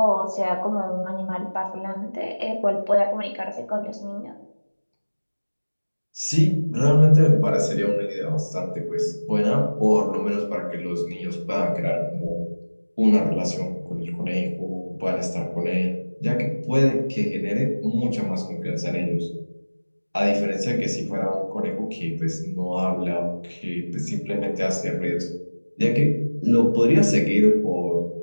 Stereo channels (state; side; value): inverted; both; correlation -1.00